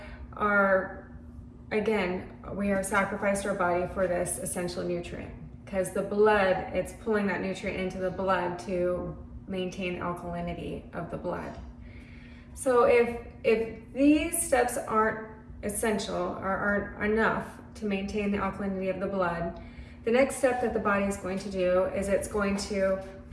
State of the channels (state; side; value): identical; both; correlation 1.00